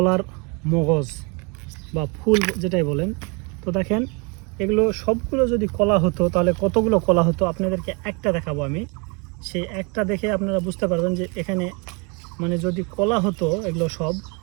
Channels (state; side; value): quieter; left; 31.8 dB